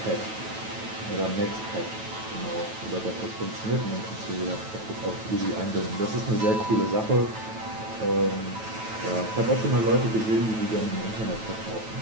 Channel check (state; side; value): late; left; 9.1 ms